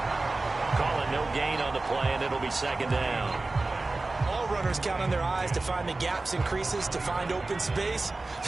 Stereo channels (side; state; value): left; quieter; 3.3 dB